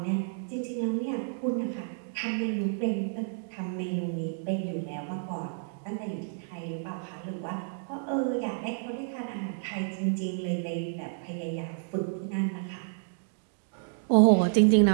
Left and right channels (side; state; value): left; silent; digital silence